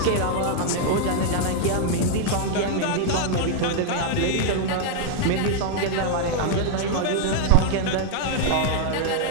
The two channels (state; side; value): different; both; correlation -0.01